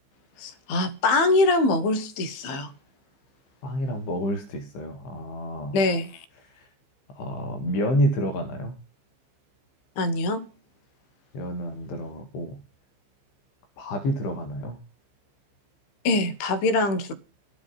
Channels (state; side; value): late; right; 15 ms